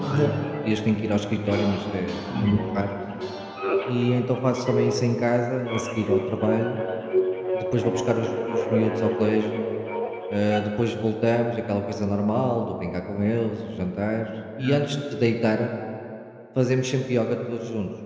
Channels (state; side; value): identical; both; correlation 1.00